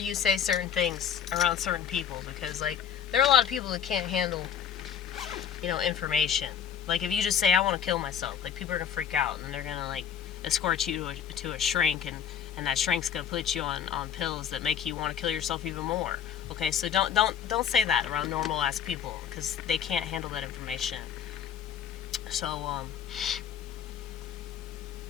say certain things around certain people, because like there are a lot of people that can't handle, you know, information. Like if you just say I want to kill myself, like people are gonna freak out and they're gonna like escort you to a shrink, and that shrink's gonna put you on pills that make you want to kill yourself even more. Okay, so don't say that around normal ass people because they can't handle that information. So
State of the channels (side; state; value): right; quieter; 8.5 dB